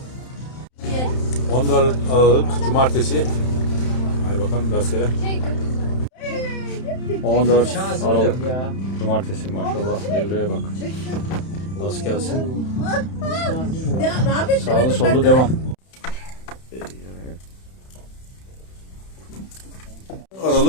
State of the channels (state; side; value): late; right; 31 ms